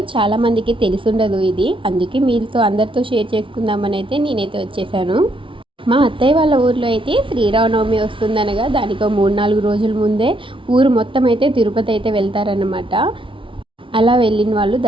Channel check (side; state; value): left; late; 0.25 ms